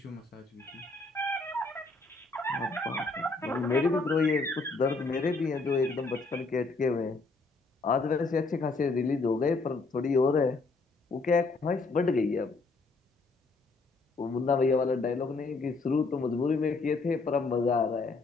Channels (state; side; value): quieter; right; 3.7 dB